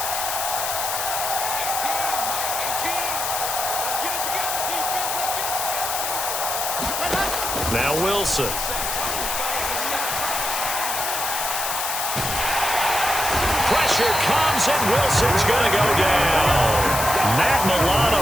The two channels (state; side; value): noise; left; hiss, 2 dB below the sound